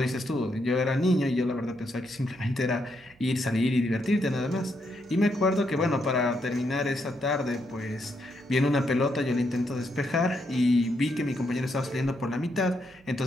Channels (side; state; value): right; noise; hum, 30 dB below the sound